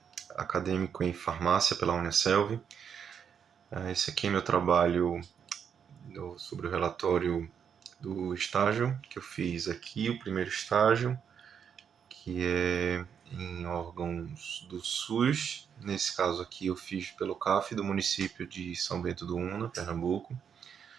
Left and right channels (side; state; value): left; quieter; 7.6 dB